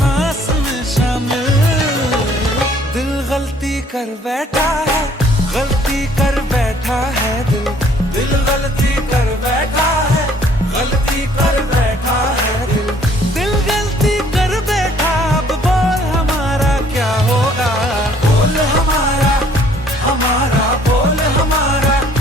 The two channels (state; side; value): normal; both; correlation 0.60